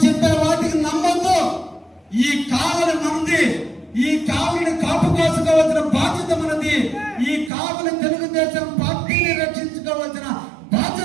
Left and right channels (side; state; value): left; drops out; at 7.5 s